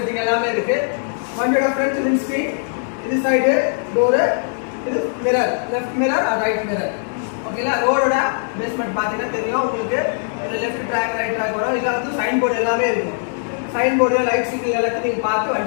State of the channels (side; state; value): right; silent; digital silence